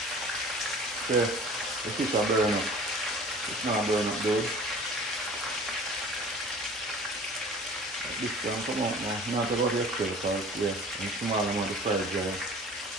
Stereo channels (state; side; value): normal; both; correlation 0.44